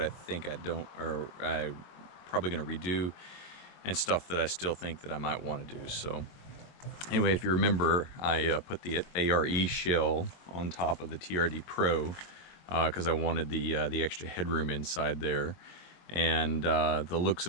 I think I don't, or I'm probably going to redo, and stuff that I still think that I might want to do. So anyway, if you remember, I put the ARE shell on top of the TRD Pro because I wanted the extra headroom inside there, and the looks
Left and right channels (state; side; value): late; right; 22 ms